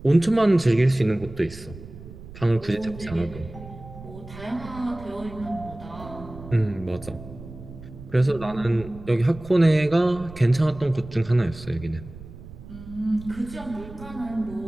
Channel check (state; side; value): noise; right; rumble, 15 dB below the sound